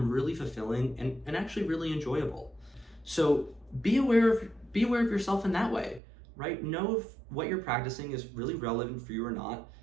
really fulfilling and actually really enjoyable. So be aware of yourself in that way, right? Know if what you're practicing is really relevant for you or not.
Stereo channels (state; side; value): drops out; left; at 6.0 s